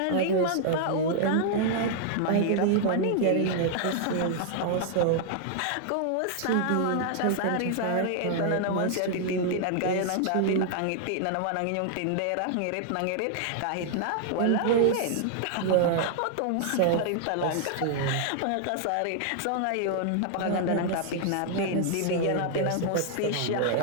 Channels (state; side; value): different; both; correlation 0.00